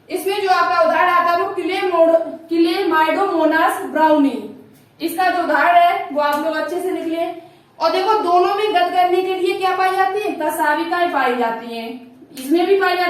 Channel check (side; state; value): both; identical; correlation 1.00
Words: इसमें जो आपका उदाहरण आता है वो क्लेमाइडोमोनास ब्राउनी। इसका जो उदाहरण है वो आप लोग अच्छे से लिख लें। और देखो दोनों में गत करने के लिए क्या पाई जाती है, कसाविकाएं पाई जाती हैं। इसमें भी पाई